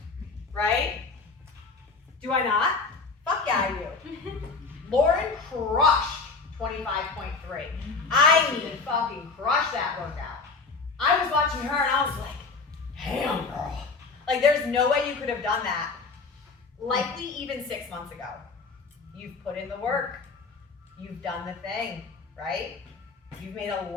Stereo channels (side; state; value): right; quieter; 4.3 dB